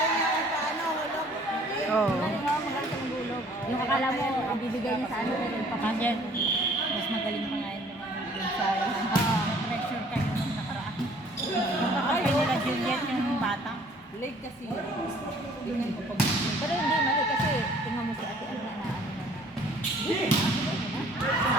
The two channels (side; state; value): both; normal; correlation 0.56